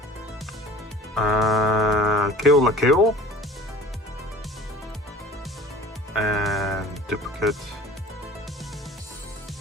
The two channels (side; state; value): both; normal; correlation 0.44